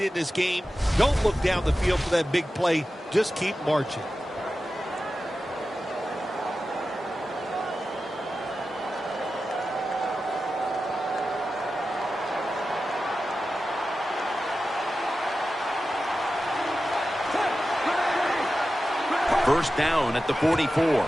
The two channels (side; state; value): both; normal; correlation 0.93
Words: this game. Don't look down the field for that big play. Just keep marching. First down at the 44.